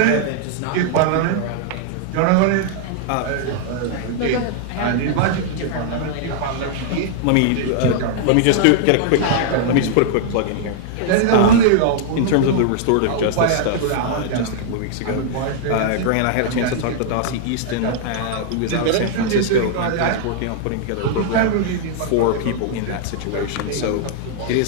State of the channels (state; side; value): different; both; correlation -0.01